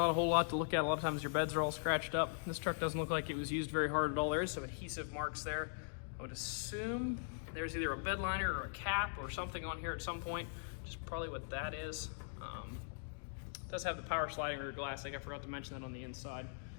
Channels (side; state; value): right; silent; digital silence